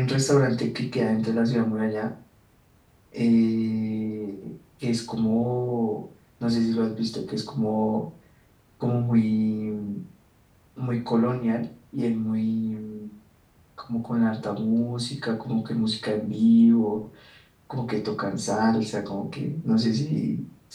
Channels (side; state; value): both; identical; correlation 1.00